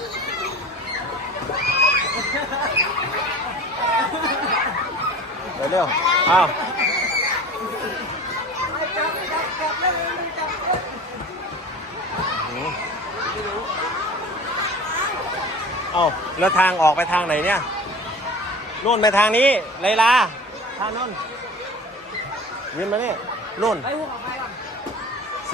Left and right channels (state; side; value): normal; both; correlation 0.39